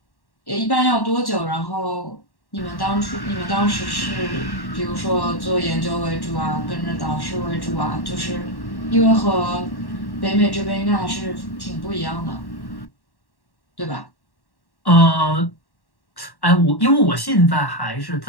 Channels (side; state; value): right; late; 1.1 ms